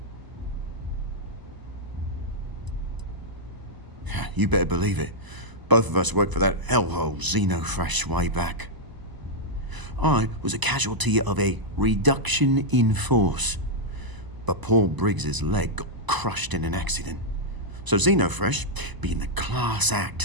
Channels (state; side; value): late; left; 1.0 ms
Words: You better believe it. Both of us worked for that hellhole Xenofresh way back. I was a casualty of a reduction in force. But Paul Briggs's leg got crushed in an accident. So Xenofresh, being the class